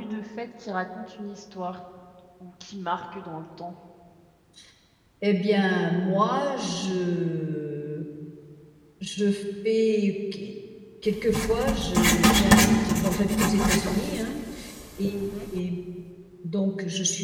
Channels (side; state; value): both; identical; correlation 1.00